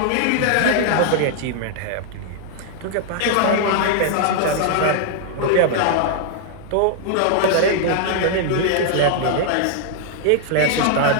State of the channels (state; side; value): different; both; correlation 0.00